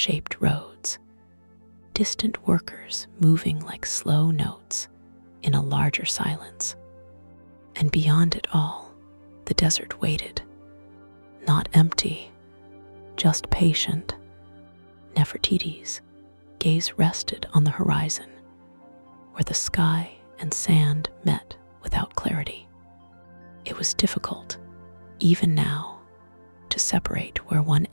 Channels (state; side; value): inverted; both; correlation -1.00